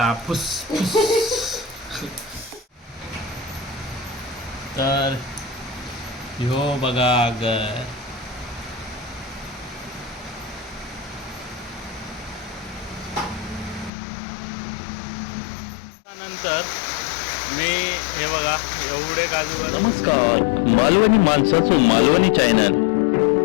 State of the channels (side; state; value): right; drops out; at 13.9 s